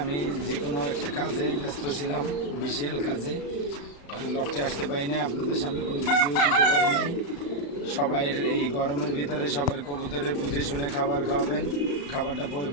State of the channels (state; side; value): late; right; 35 ms